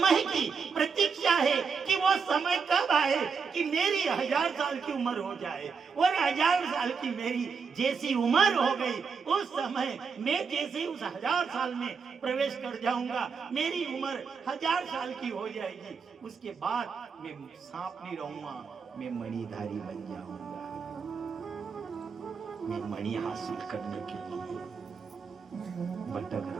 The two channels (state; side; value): quieter; left; 5.6 dB